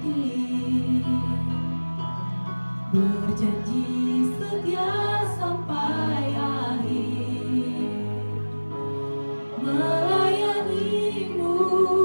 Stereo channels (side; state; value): both; inverted; correlation -1.00